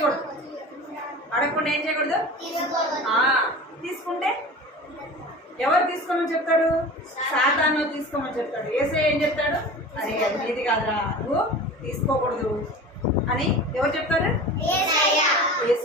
అడగకుండా ఏం చేయకూడదు? తీసుకుంటే ఎవరు తీసుకోమని చెప్తాడు? సాతాను తీసుకోమని చెప్తాడు. యేసయ్య ఏం చెప్తాడు? అరే నీది కాదురా, నువ్వు తీసుకోకూడదు అని ఎవరు చెప్తారు?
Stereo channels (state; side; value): normal; both; correlation 0.36